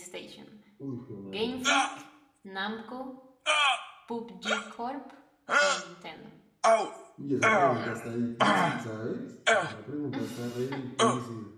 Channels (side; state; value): both; identical; correlation 1.00